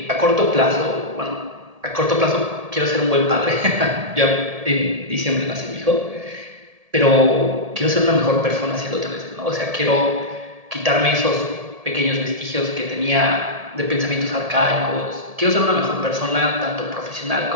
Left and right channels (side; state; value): left; late; 1.7 ms